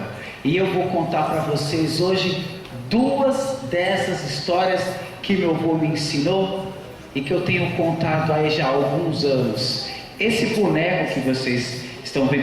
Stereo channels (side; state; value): both; identical; correlation 1.00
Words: E eu vou contar para vocês hoje duas dessas histórias que meu avô me ensinou e que eu tenho contado aí já há alguns anos. Esse boneco que vocês estão